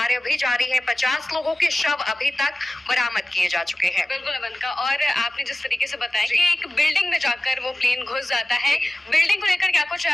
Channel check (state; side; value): normal; both; correlation 0.96